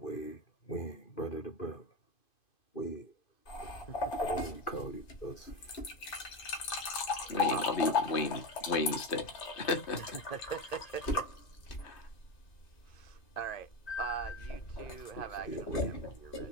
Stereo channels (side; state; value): right; late; 2.5 ms